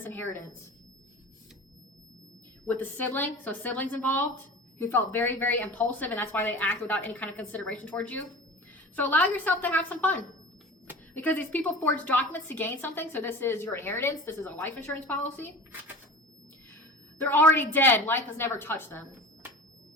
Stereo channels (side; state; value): both; normal; correlation 0.36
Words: inheritance. With the sibling, so siblings involved, who felt very, very impulsive, and that's why they act without any kind of consideration towards you. So allow yourself to have some fun. Because these people forged documents to gain something. So this is your inheritance. This is a life insurance policy. They're already dead. Life has never touched them.